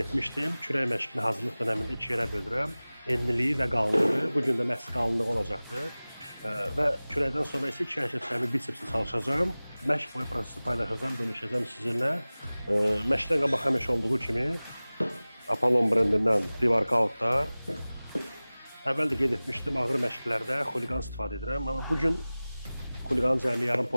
etmişdim, kürək məşqini hazırlıq dönəmində 2 yerə bölürəm. Enliliyi və qalınlığı. Bugün də məhz qalınlığı olacaqdır. Və kürəkdən sonra isə 2 hərəkətlərimi bisepslə çalışacağım. Məşq boyu prosesi paylaşacağım, bölüşəcəm sizinlə. Məşqdən qabaq həmişə olduğu kimi Apollon brendindən pre-workoutlar. Əvvəl də qeyd etmişdim, ağır məşqlərdə xuliqan istifadə edirəm. Amma bugün xuliqanın cəmi yarım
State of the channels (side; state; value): both; inverted; correlation -0.99